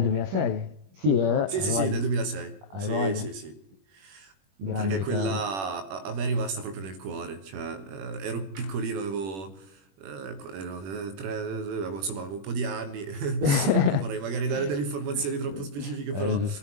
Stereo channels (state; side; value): late; left; 21 ms